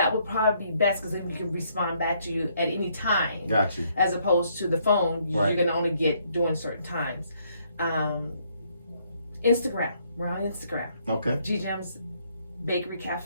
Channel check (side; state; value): both; inverted; correlation -0.70